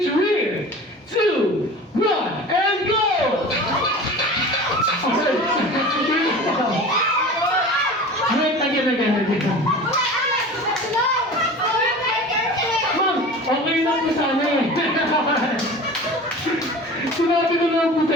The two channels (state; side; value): normal; both; correlation 0.37